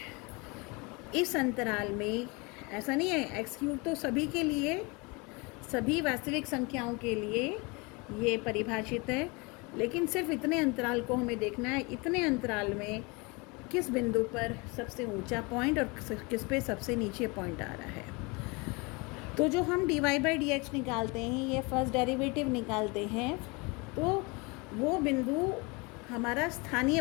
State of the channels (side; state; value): right; quieter; 28.0 dB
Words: इस अंतराल में ऐसा नहीं है, x³ तो सभी के लिए, सभी वास्तविक संख्याओं के लिए ये परिभाषित है, लेकिन सिर्फ इतने अंतराल को हमें देखना है। इतने अंतराल में किस बिंदु पर सबसे ऊंचा पॉइंट और किस पे सबसे नीचे पॉइंट आ रहा है। तो जो हम dy/dx निकालते हैं, ये फर्स्ट डेरिवेटिव निकालते हैं, तो वो बिंदु हमारा स्थानीय